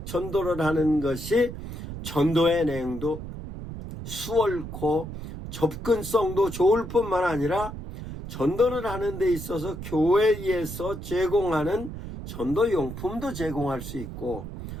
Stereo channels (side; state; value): right; noise; rumble, 9 dB below the sound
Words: 전도를 하는 것이 전도의 내용도 수월코 접근성도 좋을 뿐만 아니라 전도를 하는 데 있어서 교회에서 제공하는 전도용품도 제공할 수 있고,